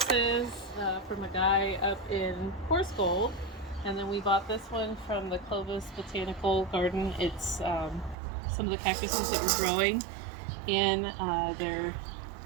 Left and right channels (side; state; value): left; drops out; at 8.2 s